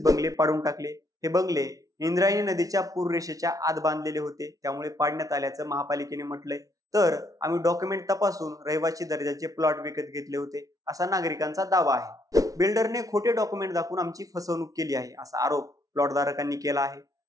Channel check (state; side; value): late; left; 0.17 ms